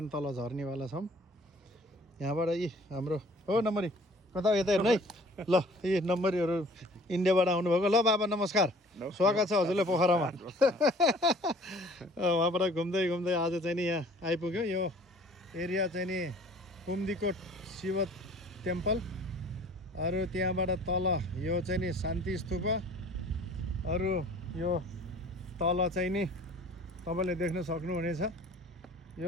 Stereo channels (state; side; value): normal; both; correlation 0.51